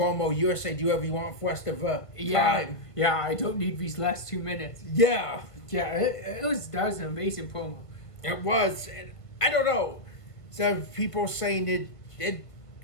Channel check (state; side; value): late; right; 1.5 ms